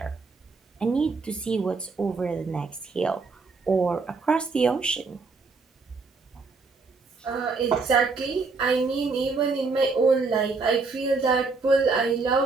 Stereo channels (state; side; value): quieter; left; 4.2 dB